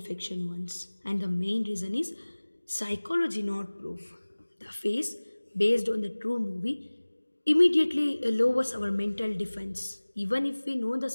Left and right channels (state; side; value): inverted; both; correlation -1.00